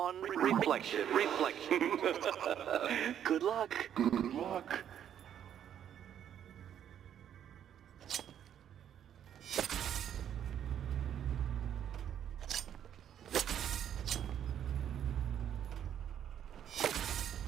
reflection? Good luck. Good luck.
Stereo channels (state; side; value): quieter; left; 9.7 dB